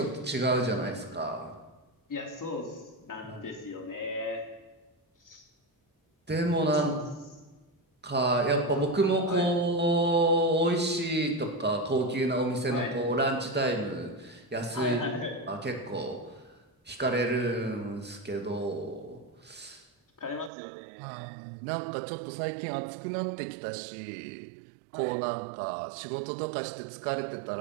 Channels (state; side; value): drops out; left; at 20.5 s